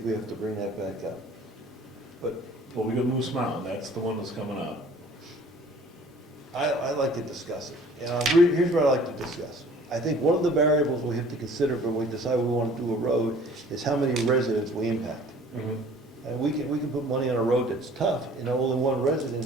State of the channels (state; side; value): normal; both; correlation 0.50